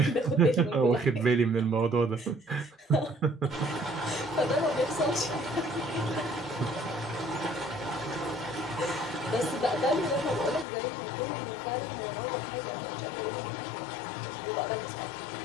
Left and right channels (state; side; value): drops out; right; at 10.7 s